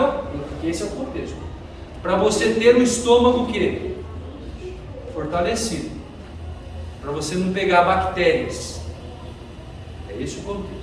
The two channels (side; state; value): both; identical; correlation 1.00